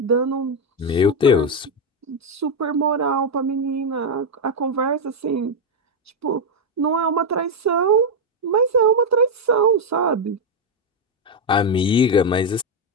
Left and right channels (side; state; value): both; normal; correlation 0.03